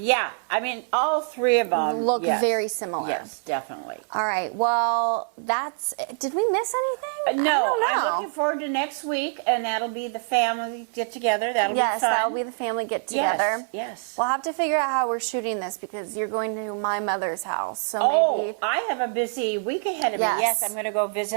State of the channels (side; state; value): left; silent; 57 dB below the other